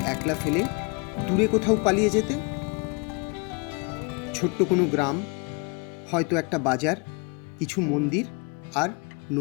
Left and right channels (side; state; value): right; quieter; 32.2 dB